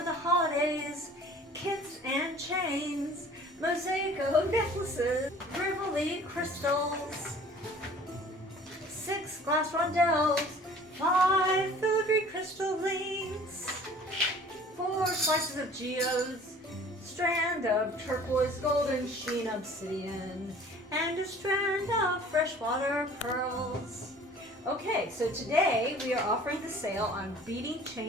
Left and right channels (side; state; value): both; normal; correlation 0.49